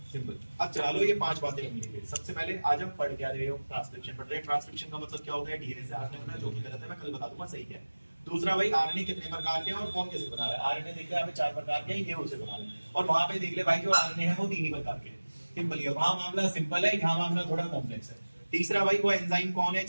सिंपल। अब चलो ये 5 बातें हम लेंगे। सबसे पहले आज हम पढ़ क्या रहे हो? ट्रांसक्रिप्शन पढ़ रहे हैं। ट्रांसक्रिप्शन का मतलब क्या होता है? डीएनए से आरएनए बनना, जो कि गलत है मैं कल बता दूंगा सही क्या है। दूसरा भाई आरएनए कितने प्रकार के हैं और कौन कैसे बना रहा है? आरएनए देख ले यहाँ पे 4 प्रकार के हैं, ये उसे बना रहे हैं, और वहां पे देख ले भाई जो आरएनए है वो 3 ही प्रकार के हैं। सिंपल है, वहां मामला सिंपल है, यहाँ मामला थोड़ा कॉम्प्लेक्स है। तीसरा भाई वो एंजाइम कौन है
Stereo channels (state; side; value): inverted; both; correlation -1.00